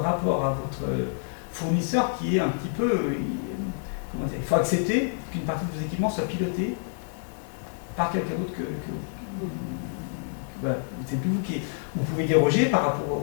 à votre fournisseur qui est un petit peu... comment dire, il faut accepter qu'une partie de vos équipements soit pilotée par quelqu'un d'autre que voilà, c'est plus vous qui... Vous pouvez déroger par rapport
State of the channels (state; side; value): silent; right; digital silence